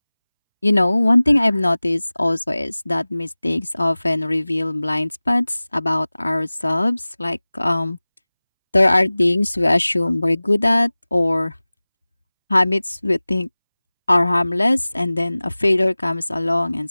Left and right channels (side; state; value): both; inverted; correlation -0.99